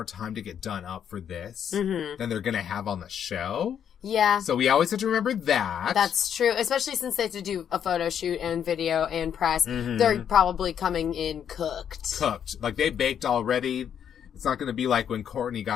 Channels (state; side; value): quieter; right; 8.7 dB